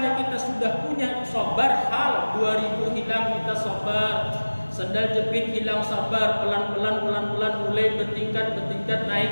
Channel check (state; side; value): inverted; both; correlation -1.00